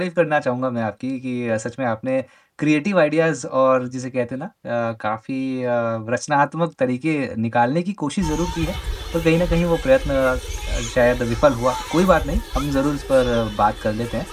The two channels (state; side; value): identical; both; correlation 1.00